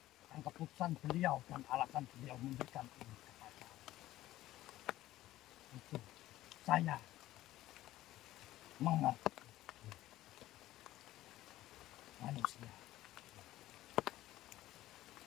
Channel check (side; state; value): right; quieter; 15.3 dB